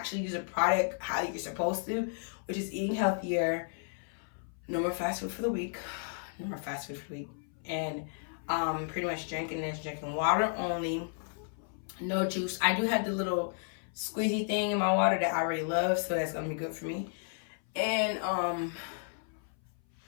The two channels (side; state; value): right; silent; 56 dB below the other